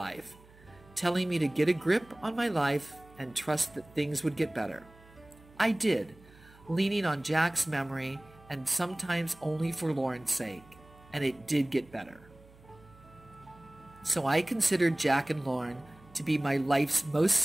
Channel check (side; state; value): right; noise; hum, 25 dB below the sound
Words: telling me to get a grip on my life and trust that things would get better. I did, leaning on Jack's memory and sometimes only for Lauren's sake, and it did get better. So I considered Jack and Lauren to be my life's most